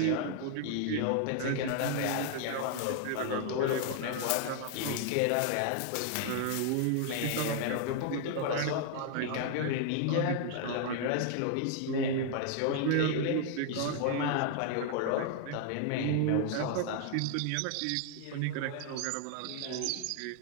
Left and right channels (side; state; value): both; different; correlation 0.00